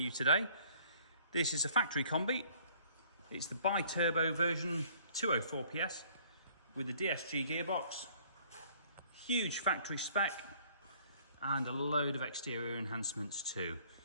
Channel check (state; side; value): inverted; both; correlation -0.57